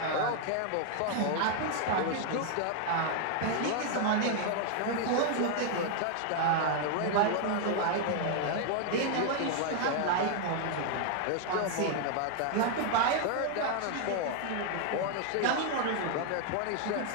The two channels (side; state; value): both; different; correlation 0.00